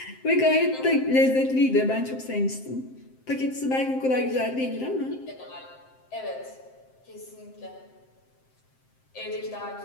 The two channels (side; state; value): right; late; 7.7 ms